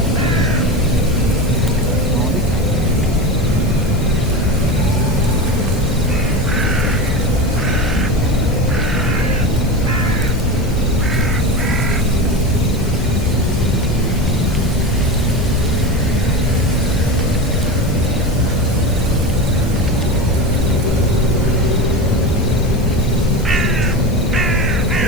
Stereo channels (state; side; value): noise; left; hiss, 22 dB below the sound